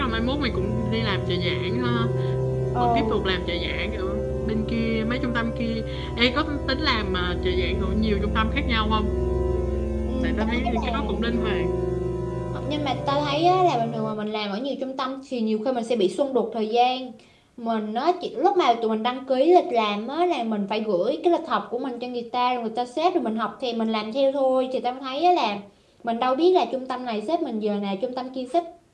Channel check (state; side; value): identical; both; correlation 1.00